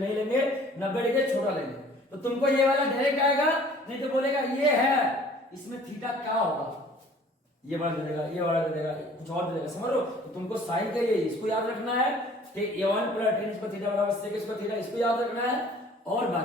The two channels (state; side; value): normal; both; correlation 0.52